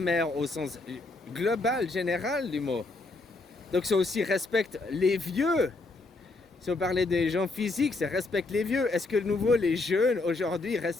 au sens global, général du mot. Donc ça aussi respecte les vieux. Si on parlait des gens physiques, ça respecte les vieux. Est-ce que de nouveau les jeunes aujourd'hui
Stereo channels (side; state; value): right; quieter; 3.3 dB